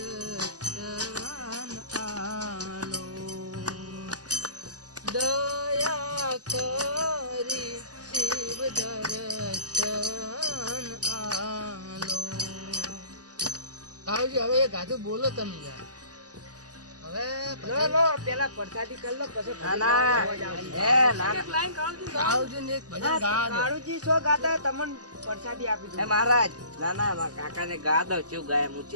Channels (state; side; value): late; left; 0.67 ms